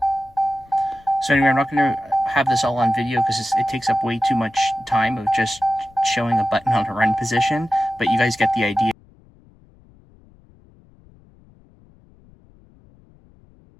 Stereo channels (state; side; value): noise; left; rumble, 28 dB below the sound